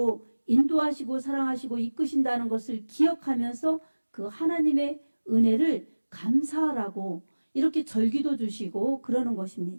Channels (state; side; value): inverted; both; correlation -1.00